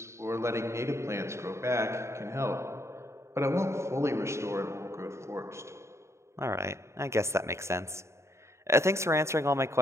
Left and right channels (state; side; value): late; left; 0.13 ms